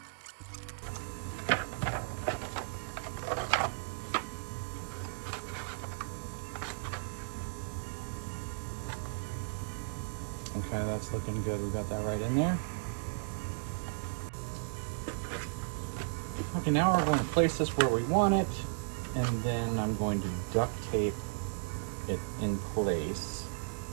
Okay, that's looking good. We got that right in there. Okay, now we're going to place this where we want it, and then I'm going to duct tape it in place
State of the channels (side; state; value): left; silent; digital silence